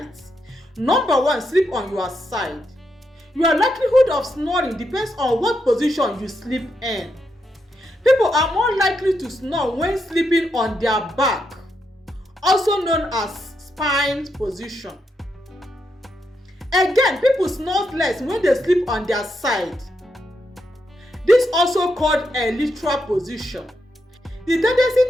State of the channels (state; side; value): normal; both; correlation 0.82